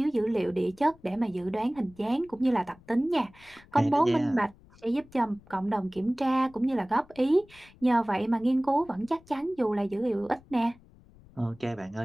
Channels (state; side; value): noise; left; rumble, 26 dB below the sound